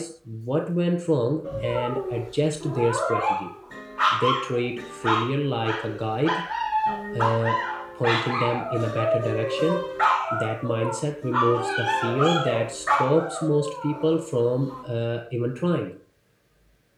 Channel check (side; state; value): both; identical; correlation 1.00